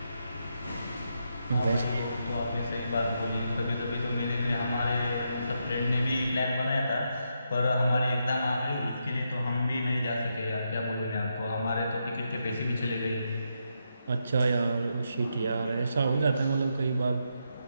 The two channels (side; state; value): both; inverted; correlation -0.82